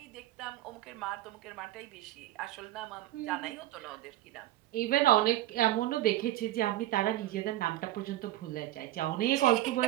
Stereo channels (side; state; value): left; quieter; 15.2 dB